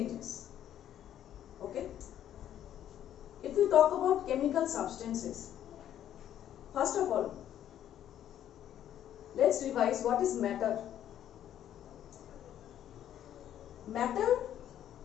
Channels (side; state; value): right; quieter; 10.9 dB